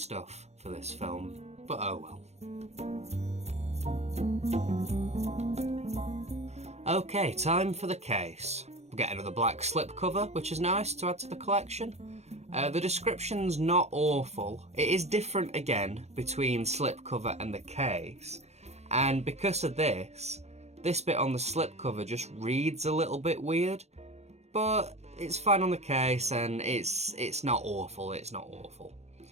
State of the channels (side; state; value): left; late; 0.32 ms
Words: for this film, but oh well. Okay, time for the case. We get another black slipcover, which is nice to add to the collection. The description's not awful. It is different again between slipcover and the case, and because of this bit on the slipcover just reads a little bit weird. but it's fine on the case, and it's not awful, it's not awful.